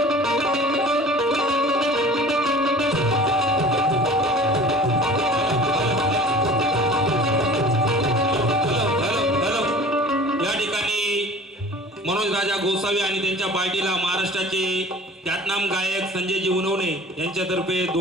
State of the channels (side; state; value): both; normal; correlation 0.43